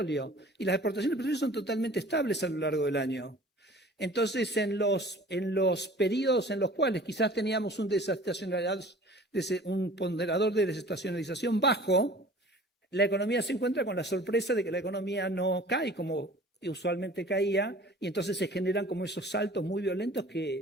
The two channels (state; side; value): normal; both; correlation 0.46